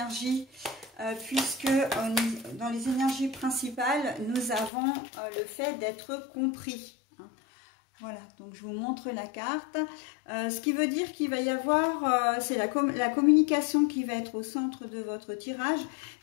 puisque dans les énergies principales, nous avons le fait d'être compris. Hein. Voilà, donc je vous montre la carte. Ce qui veut dire qu'il va y avoir, c'est la communication qui va être au centre de votre tirage,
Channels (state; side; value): drops out; right; at 4.7 s